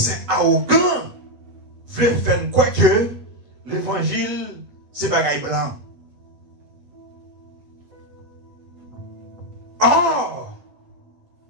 arrogant veut faire quoi que l'évangile, c'est bagaille blanc. Oh!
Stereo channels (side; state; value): left; late; 8.4 ms